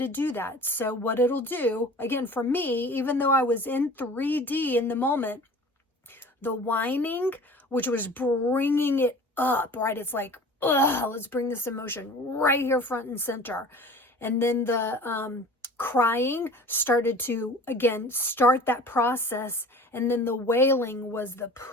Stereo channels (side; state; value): both; normal; correlation 0.42